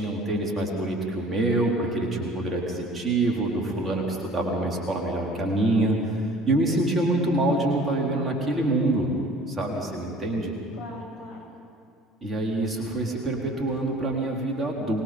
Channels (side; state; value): both; normal; correlation 0.49